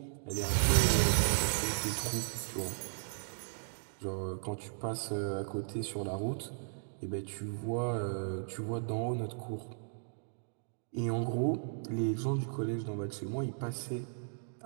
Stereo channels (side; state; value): left; silent; digital silence